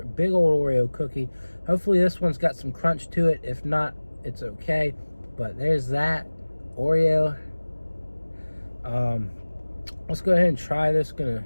big old Oreo cookie. Hopefully this one's got some crunch to it. If not, it's okay. But there's that Oreo. Let's go ahead and try this. Gonna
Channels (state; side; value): inverted; both; correlation -1.00